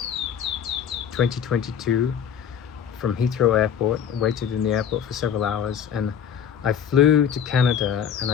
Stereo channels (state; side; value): quieter; right; 8.3 dB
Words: 2022 from Heathrow Airport, waited in the airport for several hours, and I flew to Canada, and